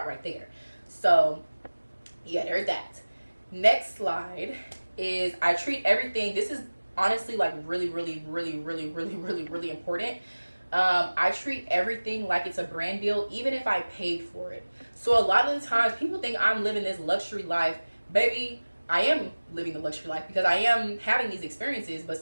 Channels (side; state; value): both; inverted; correlation -1.00